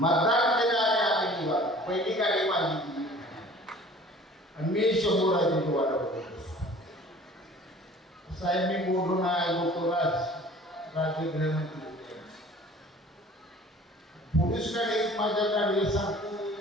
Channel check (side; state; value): both; normal; correlation 0.47